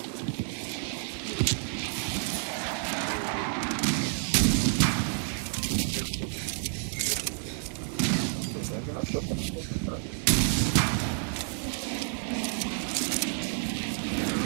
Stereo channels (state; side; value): silent; left; 58 dB below the other